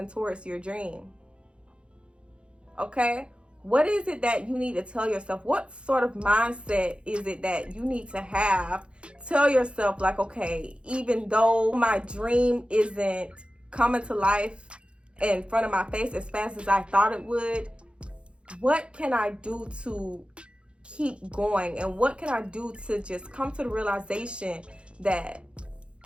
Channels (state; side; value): late; left; 0.057 ms